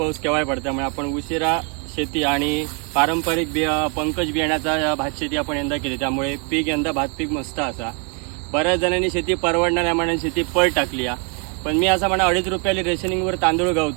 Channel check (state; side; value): quieter; left; 36.9 dB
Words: केव्हाही पडतो, त्यामुळे आपण उशिरा शेती आणि पारंपरिक पंकज बियाण्याचा भात शेती आपण यंदा केली, त्यामुळे पीक यंदा भात पीक मस्त असा. बऱ्याच जणांनी शेती परवडणाऱ्या मानाने शेती पळ टाकली आहे. पण मी असं म्हणा, 2.5 रुपयाला रेशनिंगवर तांदूळ